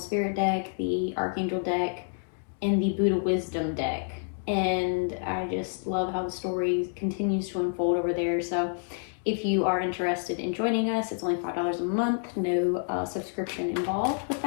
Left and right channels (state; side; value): silent; right; 59 dB below the other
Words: deck, the Archangel deck, and the Buddha Wisdom deck. And I just love how the story continues to unfold over there. So if you are interested in joining us, it's only $5 a month, no subscription involved with